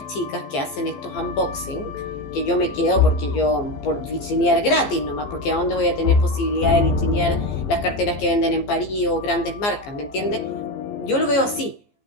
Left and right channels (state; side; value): late; right; 15 ms